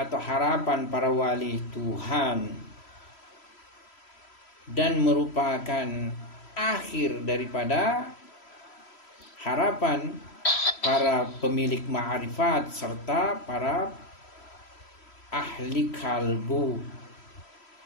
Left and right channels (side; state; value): right; late; 3.1 ms